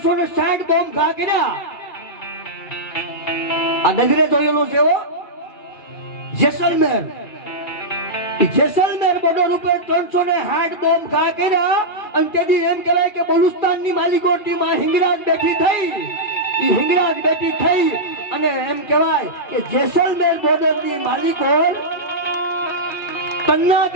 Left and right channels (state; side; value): late; right; 2.4 ms